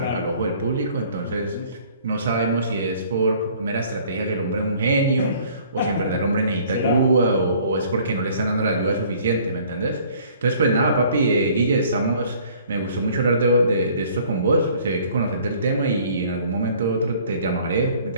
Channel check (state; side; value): inverted; both; correlation -0.56